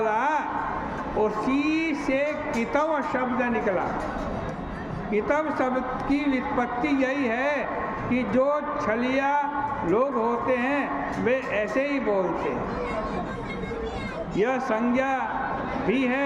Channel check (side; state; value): both; identical; correlation 1.00